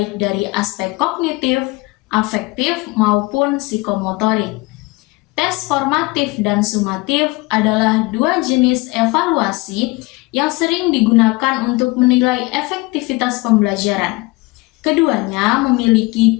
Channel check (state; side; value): quieter; right; 23.3 dB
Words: dari aspek kognitif, afektif, maupun psikomotorik. Tes formatif dan sumatif adalah dua jenis evaluasi yang sering digunakan untuk menilai efektivitas pembelajaran. Keduanya